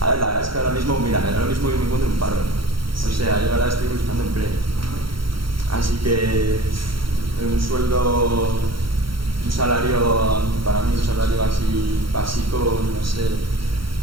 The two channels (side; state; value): left; late; 0.74 ms